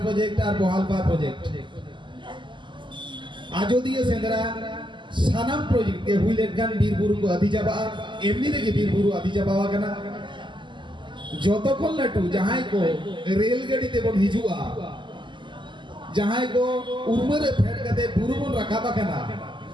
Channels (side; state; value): left; late; 0.23 ms